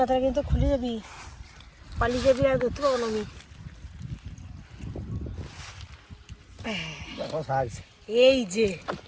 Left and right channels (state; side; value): identical; both; correlation 1.00